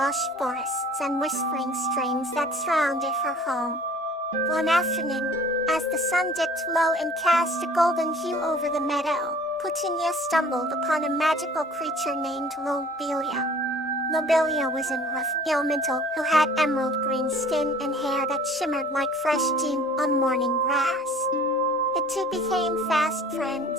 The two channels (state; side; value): normal; both; correlation 0.50